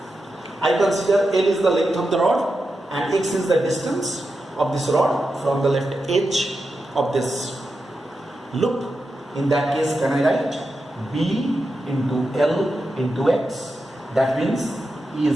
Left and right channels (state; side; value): normal; both; correlation 0.89